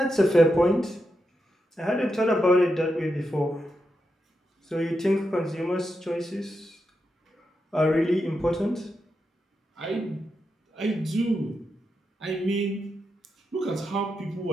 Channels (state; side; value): normal; both; correlation 0.86